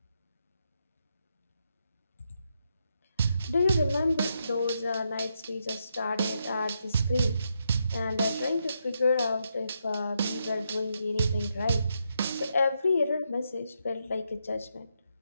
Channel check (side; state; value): both; inverted; correlation -0.81